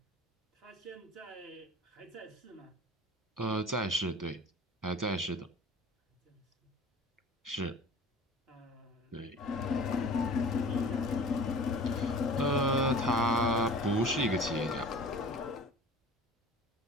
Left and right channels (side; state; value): both; normal; correlation 0.43